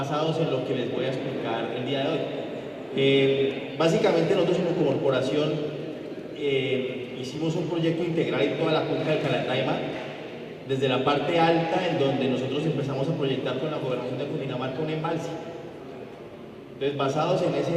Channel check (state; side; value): identical; both; correlation 1.00